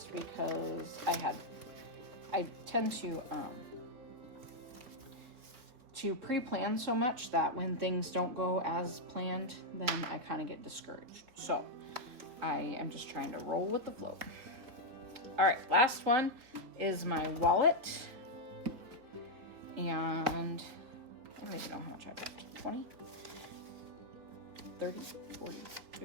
because I tend to pre-plan so much that when things don't go as planned, then I kind of get discouraged. So I am just trying to roll with the flow. All right, last one is my wallet. And I don't even know how much I've got. 20, 30, 40,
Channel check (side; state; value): left; late; 4.0 ms